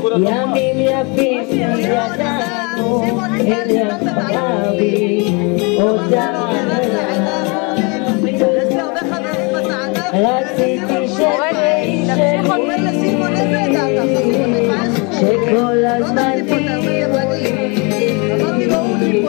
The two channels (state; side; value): quieter; right; 31.1 dB